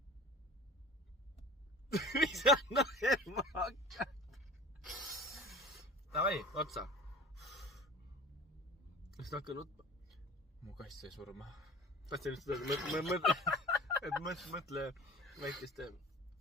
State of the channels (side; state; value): both; normal; correlation 0.41